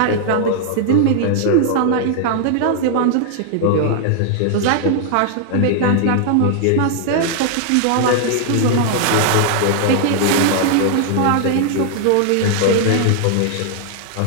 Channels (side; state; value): both; different; correlation 0.00